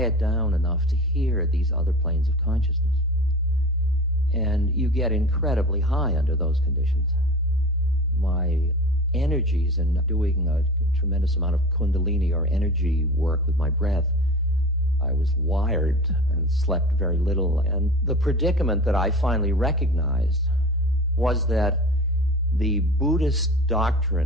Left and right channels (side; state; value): both; normal; correlation 0.35